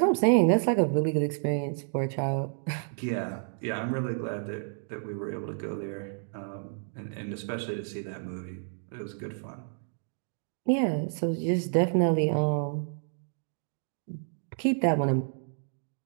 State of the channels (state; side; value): silent; left; digital silence